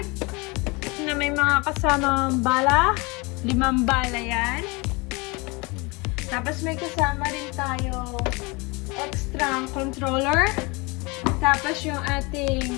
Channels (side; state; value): right; quieter; 26.9 dB